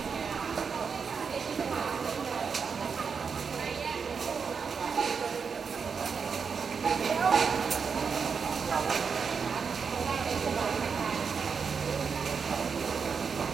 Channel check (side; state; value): left; quieter; 5.9 dB